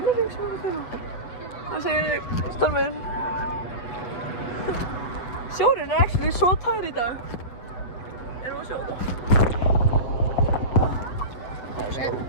sem ég er að kaupa. Það segir ég, Stormur. Sjórinn er actually svo tær í dag. Erum við að sjá þetta?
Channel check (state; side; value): late; right; 8.0 ms